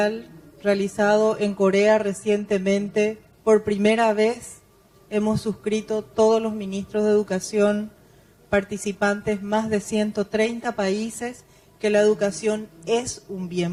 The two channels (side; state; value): both; identical; correlation 1.00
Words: realizado en Corea recientemente, por primera vez hemos suscrito todos los ministros de educación participantes, más de 130 países, que la educación es un